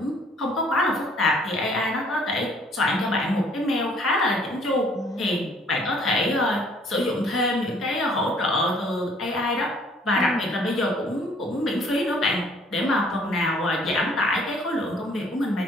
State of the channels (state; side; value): normal; both; correlation 0.59